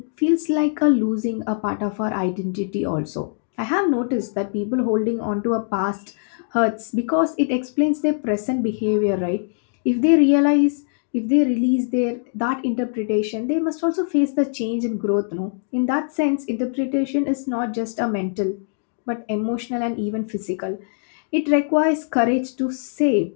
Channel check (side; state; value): right; silent; digital silence